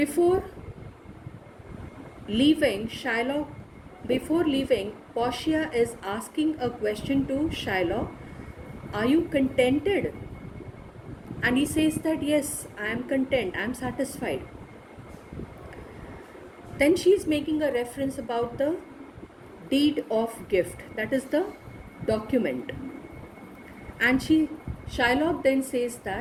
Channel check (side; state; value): both; identical; correlation 1.00